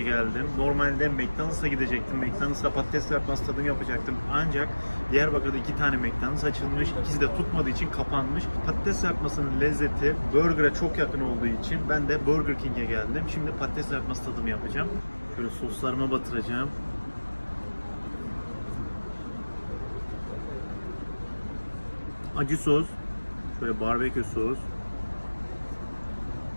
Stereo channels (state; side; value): inverted; both; correlation -1.00